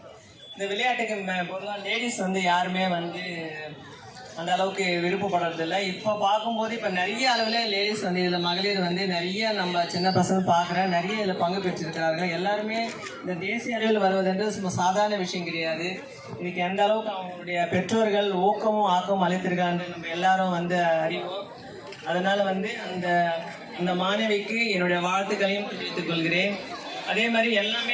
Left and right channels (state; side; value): identical; both; correlation 1.00